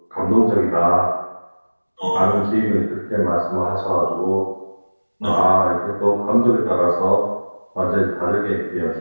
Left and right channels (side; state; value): both; inverted; correlation -1.00